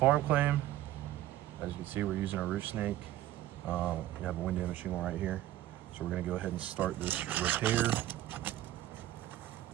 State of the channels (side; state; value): left; quieter; 14.0 dB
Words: claim. As you can see, we're using a roof snake. We have a wind damage shingle right here. So we're gonna go ahead and start this repair.